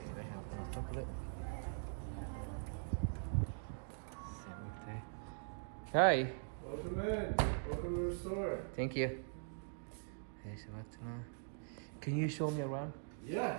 Hi. Welcome in. Welcome to the store. Thank you. Hey, Samarta. Can you show me around? Yeah.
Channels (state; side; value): silent; left; digital silence